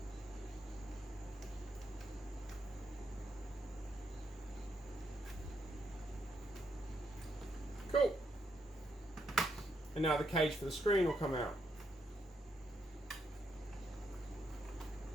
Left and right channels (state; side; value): normal; both; correlation 0.78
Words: Cool. And now the cage for the screen will come out.